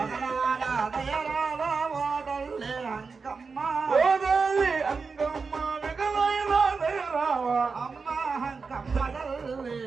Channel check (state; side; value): quieter; left; 4.8 dB